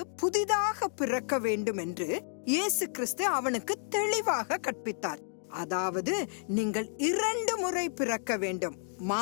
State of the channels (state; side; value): silent; right; digital silence